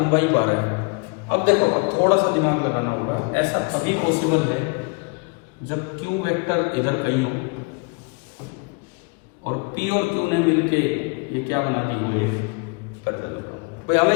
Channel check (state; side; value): quieter; right; 31.5 dB